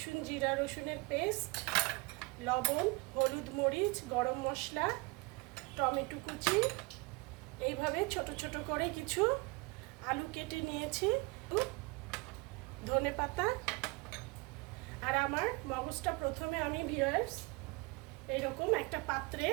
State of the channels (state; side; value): quieter; left; 27.2 dB